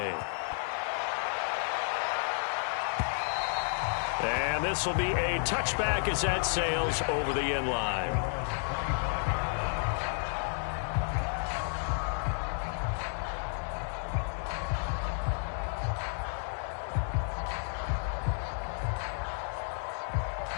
And this will be a touchback as that sails over the end line.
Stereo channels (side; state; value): right; silent; 57 dB below the other